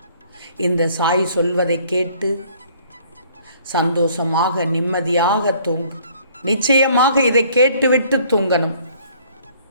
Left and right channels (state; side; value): inverted; both; correlation -0.58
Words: இந்த சாய் சொல்வதை கேட்டு சந்தோஷமாக நிம்மதியாக தூங்கு. நிச்சயமாக இதை கேட்டுவிட்டு தூங்கணும்.